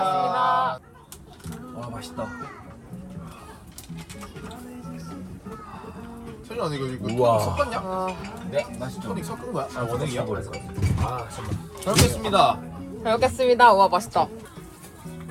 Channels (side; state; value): both; identical; correlation 1.00